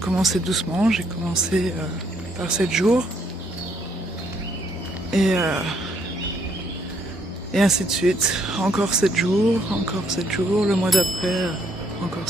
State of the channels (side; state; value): both; normal; correlation 0.70